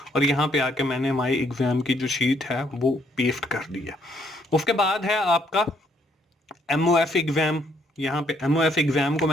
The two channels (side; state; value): both; normal; correlation 0.69